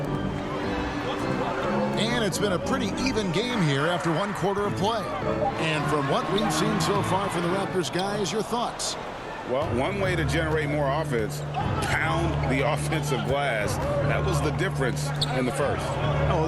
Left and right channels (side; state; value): both; identical; correlation 1.00